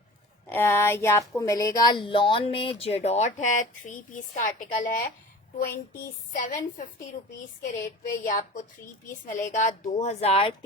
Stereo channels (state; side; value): normal; both; correlation 0.39